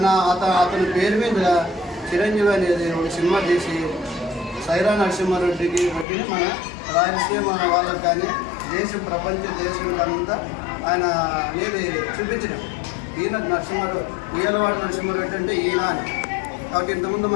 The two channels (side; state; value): right; drops out; at 6.1 s